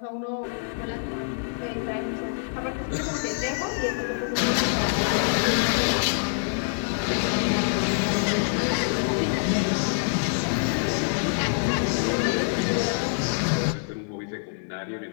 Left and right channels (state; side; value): silent; right; digital silence